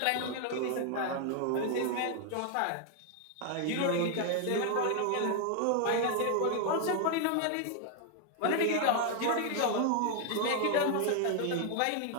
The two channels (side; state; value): both; different; correlation 0.00